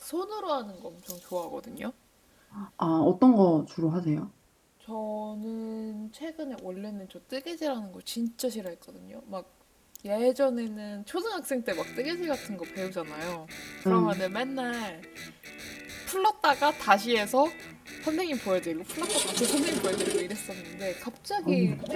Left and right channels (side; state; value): both; identical; correlation 1.00